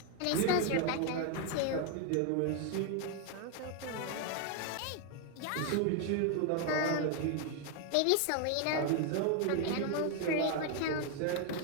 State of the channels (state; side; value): different; both; correlation 0.01